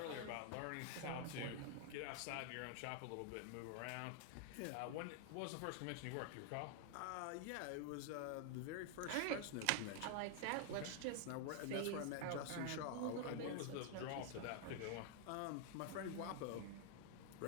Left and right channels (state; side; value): different; both; correlation 0.00